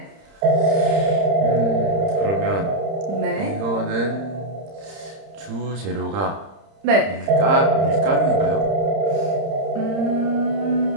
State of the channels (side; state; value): left; late; 30 ms